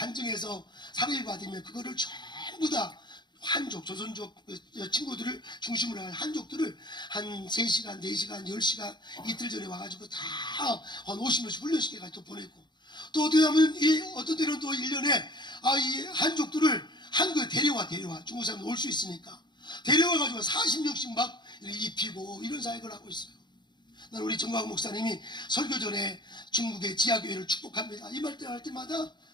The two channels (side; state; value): right; late; 0.21 ms